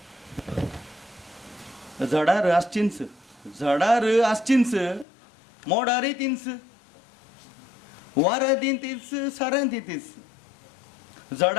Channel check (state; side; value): drops out; right; at 5.1 s